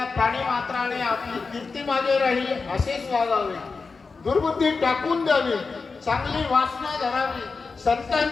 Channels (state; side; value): quieter; right; 4.5 dB